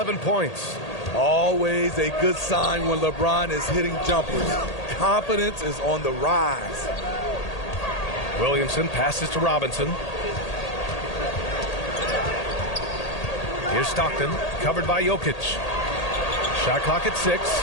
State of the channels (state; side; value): late; right; 1.8 ms